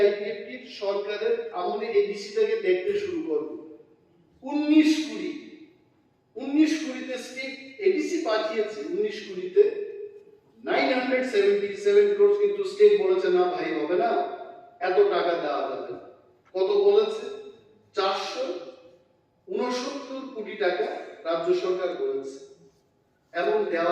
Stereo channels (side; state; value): both; identical; correlation 1.00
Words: আইপিএফটি সরকারের আমলে এডিসি থেকে দেখতে শুরু করব। 19 কুড়িতে স্টেট এডিসি পাঠিয়েছে, 19 কুড়িতে 977 crores, কিন্তু স্টেট বলেছে না ভাই হবে না, এত টাকা দেওয়া যাবে না। কত বলেছে? 469 কোটি টাকা রাজ্য সরকার বলেছে, এবং